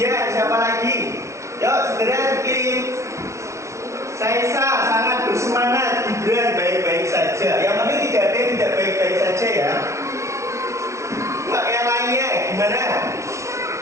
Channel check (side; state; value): left; late; 0.14 ms